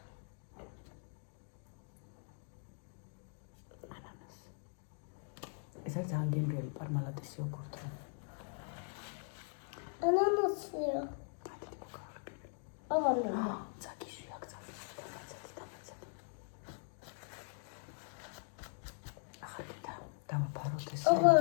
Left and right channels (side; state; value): right; silent; 51 dB below the other